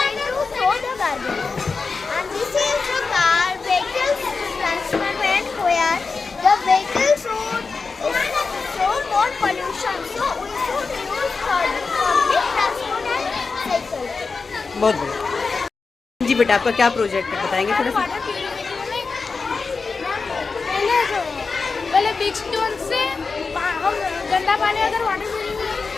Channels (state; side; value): quieter; right; 4.5 dB